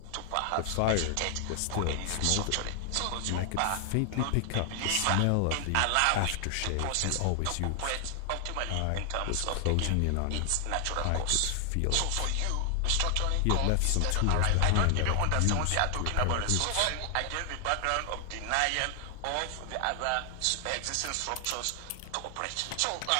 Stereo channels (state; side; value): different; both; correlation 0.00